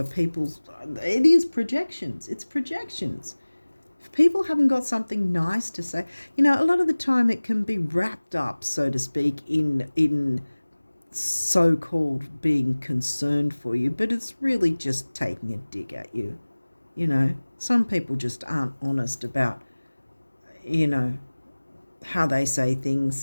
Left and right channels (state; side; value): inverted; both; correlation -1.00